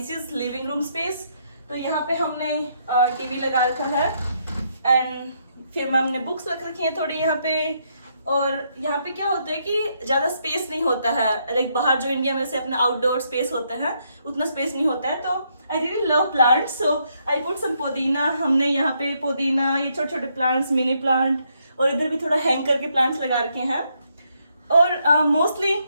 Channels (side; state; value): both; inverted; correlation -0.75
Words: is living room space. तो यहाँ पे हमने टीवी लगा रखा है एंड फिर हमने बुक्स रख रखी हैं थोड़ी यहाँ पे। और यहाँ पे क्या होता है कि ज्यादा स्पेस नहीं होता है, लाइक बाहर जो इंडिया में से अपना आउटडोर स्पेस होता है उतना स्पेस नहीं होता है। तो I really love plants, so I put some pudina. हमने यहाँ पे पुदीना, ये छोटे छोटे प्लांट्स, मिनी प्लांट, और इधर भी थोड़ा हैंग करके प्लांट्स लगा रखे हैं। और mostly